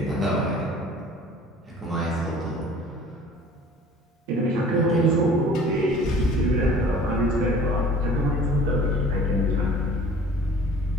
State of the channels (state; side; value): normal; both; correlation 0.47